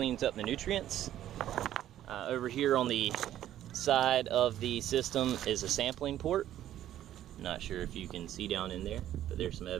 up the nutrients. Over here on the side of the system is a sampling port. Not sure if you can see down in there, but there's some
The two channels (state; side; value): quieter; left; 12.1 dB